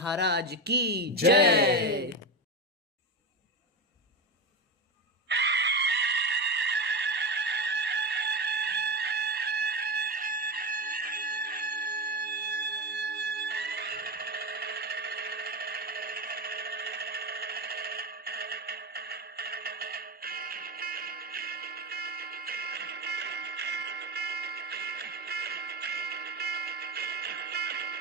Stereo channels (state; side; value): normal; both; correlation 0.17